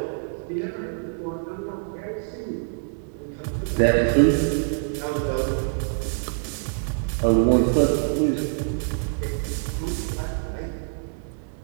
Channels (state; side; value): silent; left; digital silence